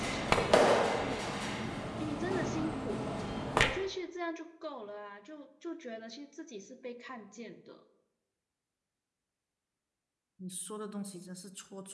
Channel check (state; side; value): identical; both; correlation 1.00